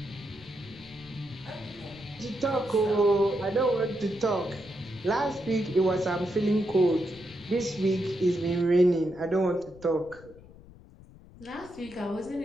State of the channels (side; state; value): left; noise; rumble, 21 dB below the sound